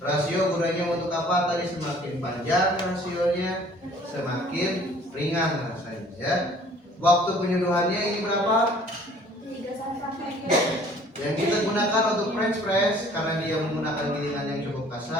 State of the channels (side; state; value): both; normal; correlation 0.54